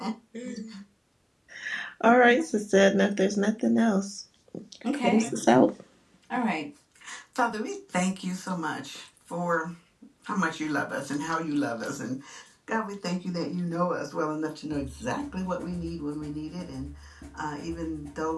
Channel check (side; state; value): both; identical; correlation 1.00